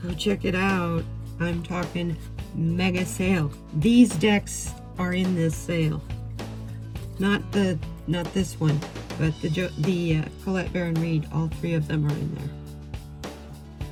Go check it out. I'm talking mega sale. These decks are in this sale. Not this one, but the Colette Baron Reed. All 3 of them are in there,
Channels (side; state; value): both; identical; correlation 1.00